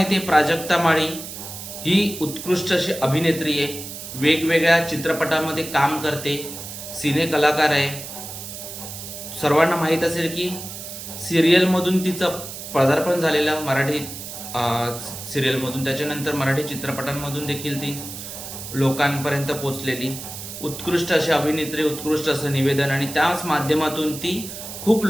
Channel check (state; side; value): noise; right; hiss, 10 dB below the sound